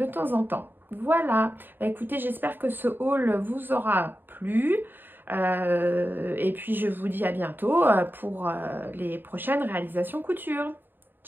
temps en temps. Voilà, bah, écoutez, j'espère que ce haul vous aura plu. Et puis je vous dis à bientôt pour les prochaines réalisations couture.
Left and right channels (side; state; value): left; late; 0.094 ms